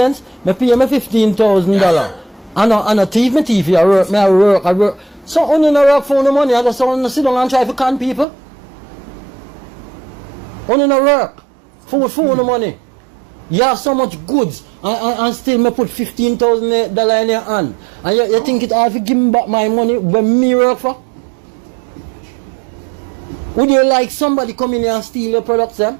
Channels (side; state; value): left; drops out; at 8.2 s